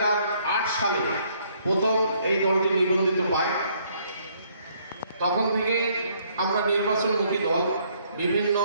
সালে প্রথম এই দলটি নিবন্ধিত পায়। তখন থেকে আমরা নির্বাচনমুখী দল, বিভিন্ন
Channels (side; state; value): both; inverted; correlation -0.66